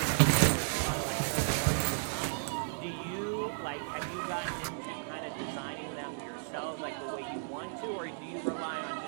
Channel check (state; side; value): silent; left; 55 dB below the other